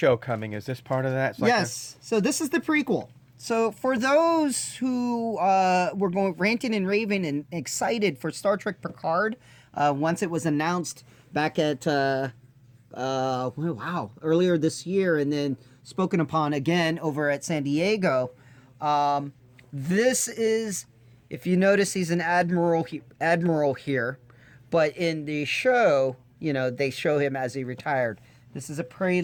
coming. Is this part of that? It's like yes. So this is the prequel. So for those who were going ranting and raving and excited for Star Trek Picard, once it was announced back at earlier this year, and then spoken upon again over at San Diego, this is, if you notice, he's an admiral here, but in the show, they show him as he retired. This is a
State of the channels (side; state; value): both; identical; correlation 1.00